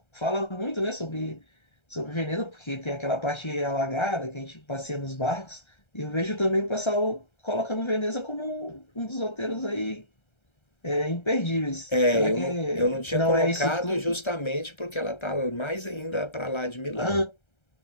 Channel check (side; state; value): right; late; 1.3 ms